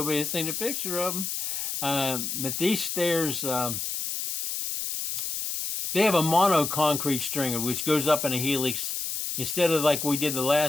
seen a picture of them. But these stairs, they have a mono concrete stringer, which goes up in a helix instead of like we did the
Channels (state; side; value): noise; left; hiss, 3 dB below the sound